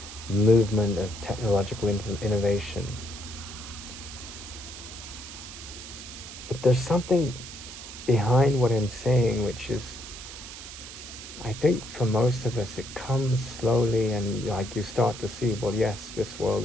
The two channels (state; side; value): noise; right; hiss, 12 dB below the sound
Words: movement of technological innovation. But there's something behind what I'm saying, which is, I think for most of us, it comes slowly, and like you start to see, well, yes, this world